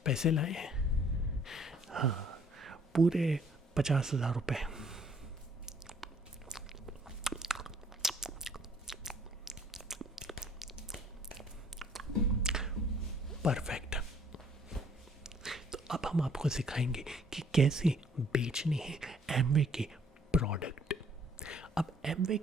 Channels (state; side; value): normal; both; correlation 0.61